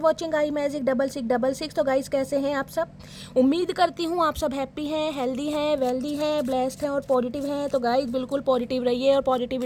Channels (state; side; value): identical; both; correlation 1.00